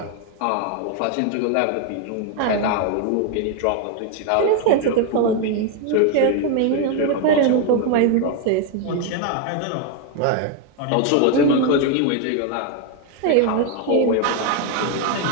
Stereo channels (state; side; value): different; both; correlation 0.01